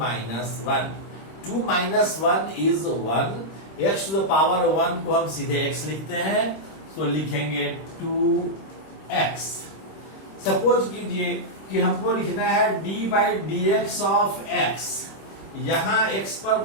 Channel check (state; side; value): late; right; 26 ms